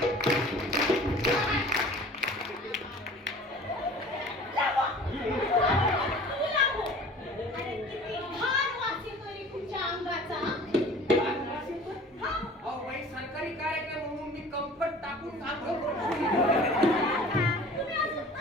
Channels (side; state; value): both; normal; correlation 0.45